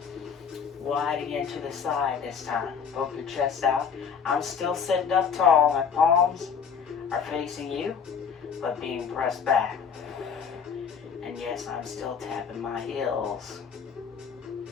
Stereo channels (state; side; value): quieter; right; 6.5 dB